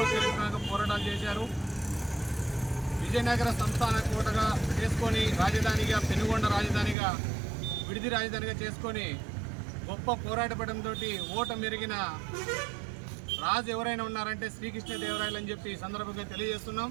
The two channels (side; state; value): left; drops out; at 7.0 s